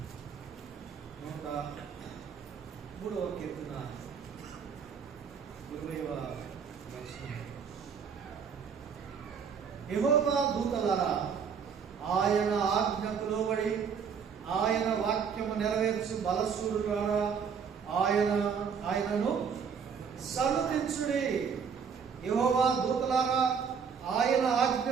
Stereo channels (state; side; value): quieter; left; 6.6 dB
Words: 103వ కీర్తన 20వ వచనం. యెహోవా దూతలారా, ఆయన ఆజ్ఞకు లోబడి ఆయన వాక్యము నెరవేర్చు బలశూరులారా, ఆయనను సన్నుతించుడి. యెహోవా దూతలారా, ఆయన